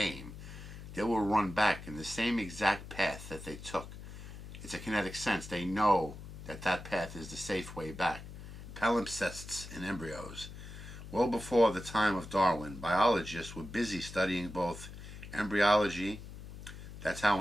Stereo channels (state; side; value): noise; left; hum, 12 dB below the sound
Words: they will run back in the same exact path that they took. It's a kinetic sense. They know that that path is the safe way back. Palimpsests in embryos. Well before the time of Darwin, biologists were busy studying both embryology, that's how